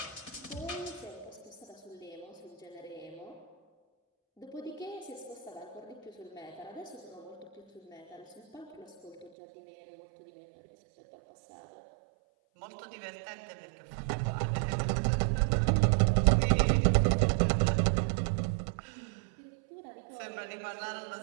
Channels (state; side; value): drops out; left; at 9.3 s